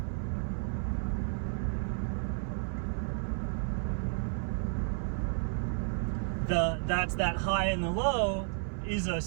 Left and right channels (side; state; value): left; silent; 56 dB below the other